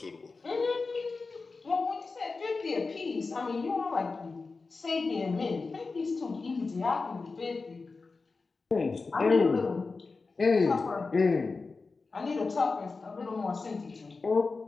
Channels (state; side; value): quieter; right; 4.1 dB